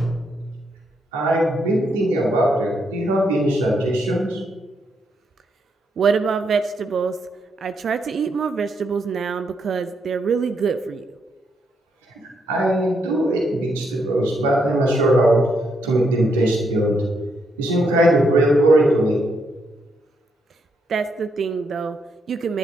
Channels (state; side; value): normal; both; correlation 0.77